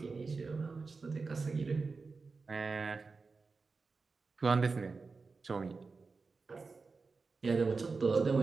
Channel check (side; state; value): left; quieter; 4.3 dB